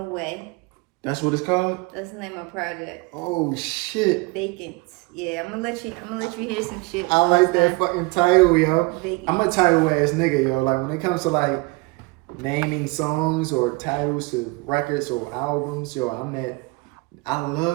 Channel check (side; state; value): left; quieter; 25.6 dB